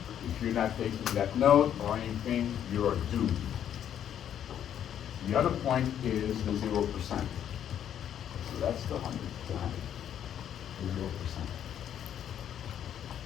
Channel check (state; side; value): quieter; right; 9.8 dB